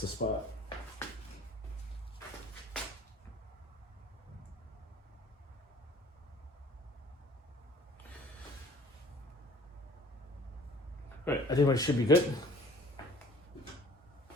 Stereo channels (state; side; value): normal; both; correlation 0.51